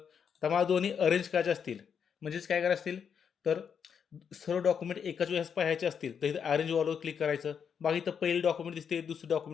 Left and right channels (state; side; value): quieter; right; 7.2 dB